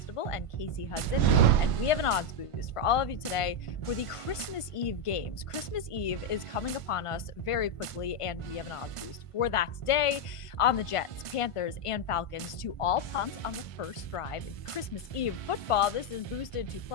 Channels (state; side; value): late; right; 1.5 ms